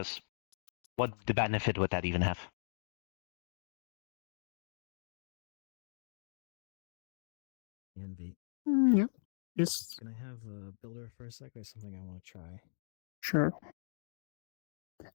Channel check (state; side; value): silent; right; digital silence